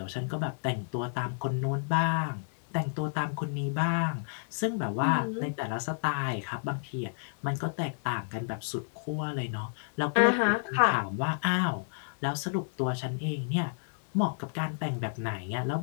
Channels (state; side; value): silent; right; 57 dB below the other